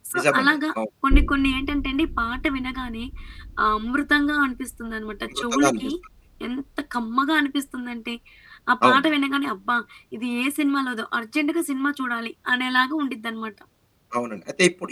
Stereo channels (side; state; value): both; identical; correlation 1.00